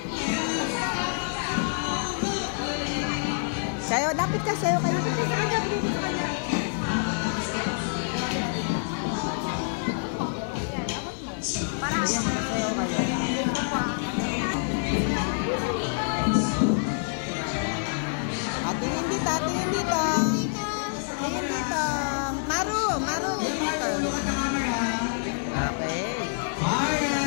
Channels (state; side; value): silent; right; 58 dB below the other